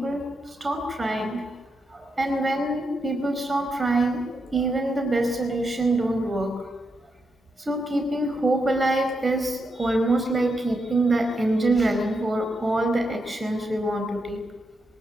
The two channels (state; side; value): normal; both; correlation 0.83